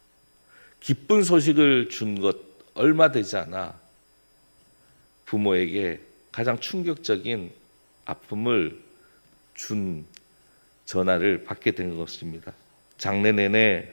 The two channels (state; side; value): inverted; both; correlation -1.00